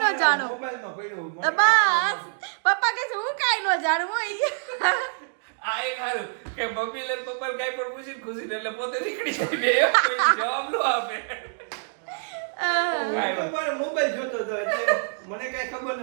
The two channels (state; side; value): silent; left; digital silence